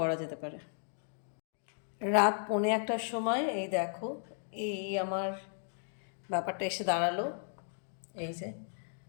যেতে পারে রাত 1:45টার সময় এই দেখো এই আমার ব্যাপারটা এসে দাঁড়ালো এই যে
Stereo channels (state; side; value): silent; right; digital silence